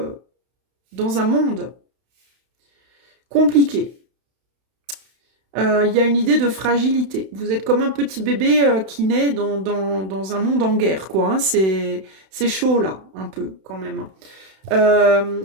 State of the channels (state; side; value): late; left; 31 ms